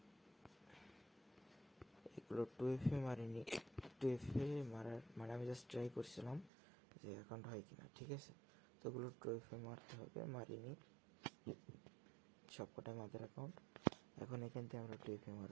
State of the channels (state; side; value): drops out; left; at 6.5 s